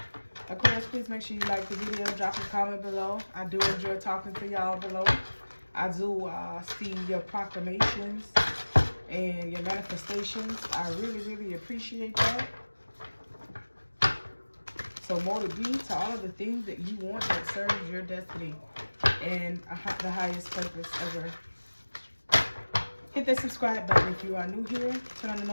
Aquarius, please make sure you like the video, drop a comment below. I do enjoy talking to y'all below. I do see your proclamations and your manifestations. I really, really appreciate that. So more to be to all of the things that you want that serves your destiny and the highest purpose ever. Hit that subscribe button if you are new here. Turn on the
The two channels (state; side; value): inverted; both; correlation -1.00